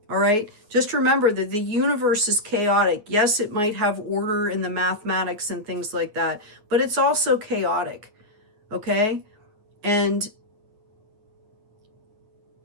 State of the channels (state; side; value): late; left; 9.2 ms